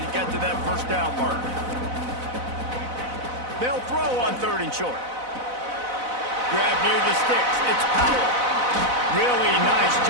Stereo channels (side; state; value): left; late; 4.0 ms